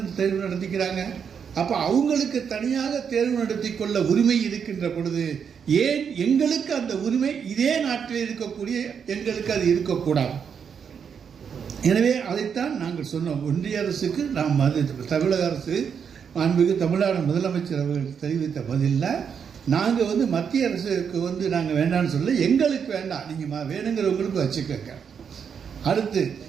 தேர்வு நடத்திக்கிறாங்க. அப்போ அவங்களுக்கு தனியாக தேர்வு நடத்தி கொள்ள உரிமை இருக்கின்ற பொழுது ஏன் எங்களுக்கு அந்த உரிமை இதே நாட்டில் இருக்கக்கூடிய எங்களுக்கு அது இருக்கக்கூடாது? எனவே அதைத்தான் நாங்கள் சொன்னோம். ஒன்றிய அரசுக்கு நாம் தமிழக அரசு மாண்புமிகு தமிழ்நாடு முதலமைச்சர் அவர்கள் தெரிவித்த பதிலில் நாங்கள் மத்திய அரசுக்கு நாங்கள் வேண்டாம்னு சொல்ல, எங்களுக்கு வேண்டாம், நீங்கள் வேணுங்கிறவங்களுக்கு வச்சுக்கோங்க. அடுத்து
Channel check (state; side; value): quieter; left; 7.1 dB